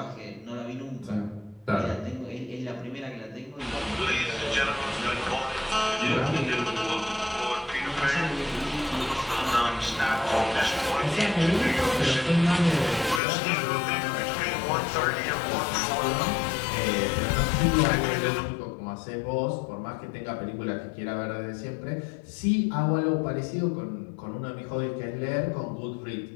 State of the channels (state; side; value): drops out; right; at 13.2 s